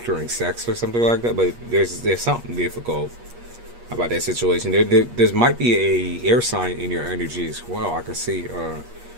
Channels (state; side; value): late; left; 8.4 ms